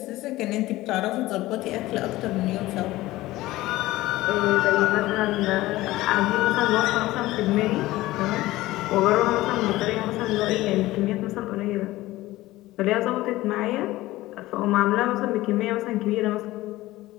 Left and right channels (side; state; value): right; quieter; 17.5 dB